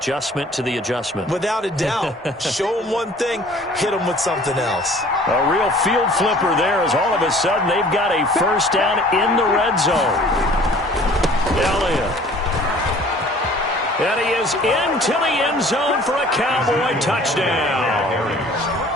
to the adjustment. Without a doubt. Show them one thing, hit them with something else. A real field flipper there as all of a sudden they've got a first down in the red zone. Elliott. And he is into the end zone for a Cowboy touchdown.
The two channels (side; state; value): both; normal; correlation 0.51